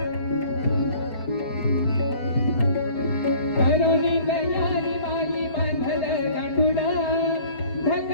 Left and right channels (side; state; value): right; late; 4.3 ms